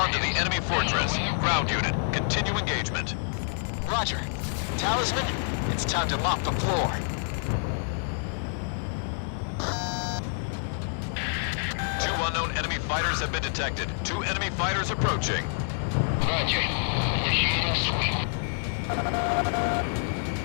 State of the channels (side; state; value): right; silent; digital silence